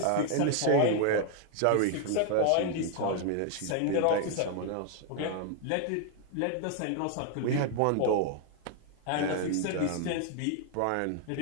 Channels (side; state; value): both; different; correlation 0.00